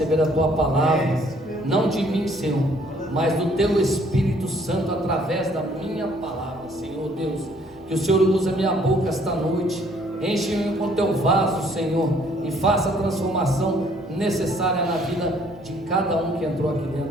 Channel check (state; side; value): noise; left; rumble, 29 dB below the sound